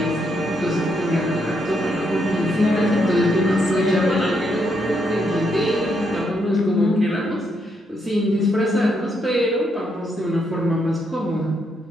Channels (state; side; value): normal; both; correlation 0.77